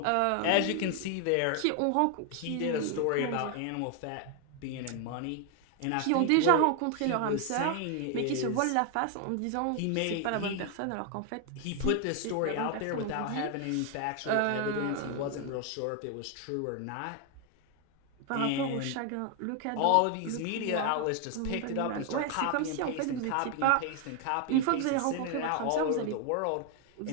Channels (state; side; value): different; both; correlation 0.01